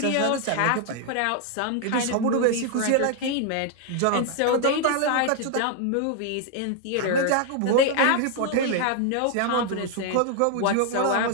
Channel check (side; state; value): both; different; correlation 0.00